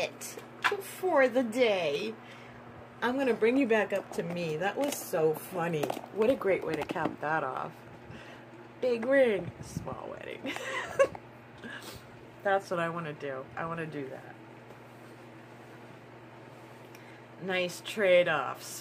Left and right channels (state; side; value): identical; both; correlation 1.00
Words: for the day. I'm going to bring you back up to me. That was so funny. What a great way to cap that off. Big ring, small wedding. That's what I want to do. I want to do that. Nice trade-off.